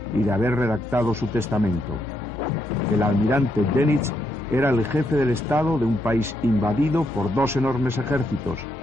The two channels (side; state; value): both; normal; correlation 0.78